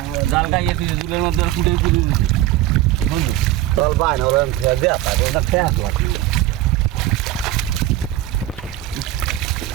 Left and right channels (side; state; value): left; quieter; 14.3 dB